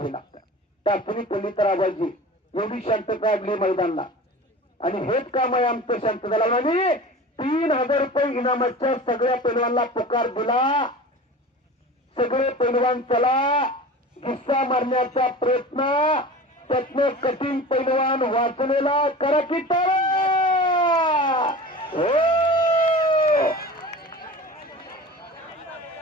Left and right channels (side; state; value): both; normal; correlation 0.36